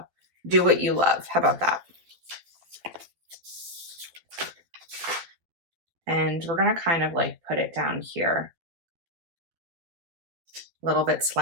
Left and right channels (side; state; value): left; late; 12 ms